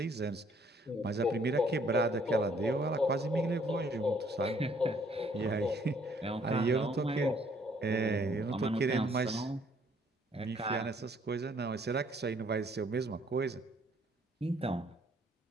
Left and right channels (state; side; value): normal; both; correlation 0.64